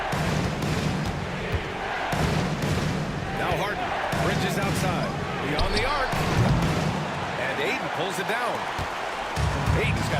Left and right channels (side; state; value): both; identical; correlation 1.00